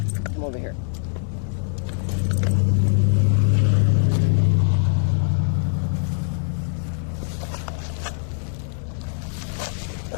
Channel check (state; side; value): silent; right; 64 dB below the other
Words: Come over here.